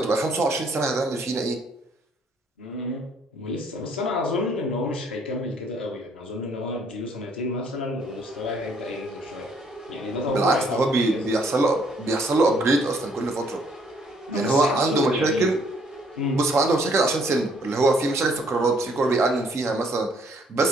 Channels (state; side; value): normal; both; correlation 0.65